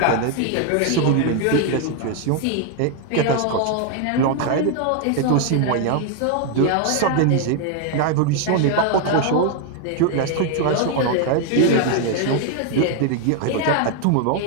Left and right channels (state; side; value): different; both; correlation 0.01